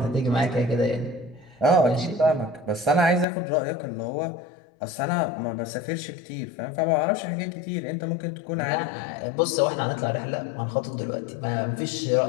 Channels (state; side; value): drops out; right; at 3.2 s